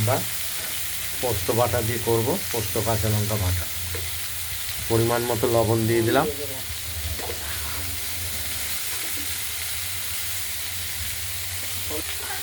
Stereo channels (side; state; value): both; identical; correlation 1.00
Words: পোস্ত বাটা দিয়ে করব। পোস্ত কাঁচা লঙ্কা বাটা, পরিমাণ মতো লবণ দিয়ে দিলাম।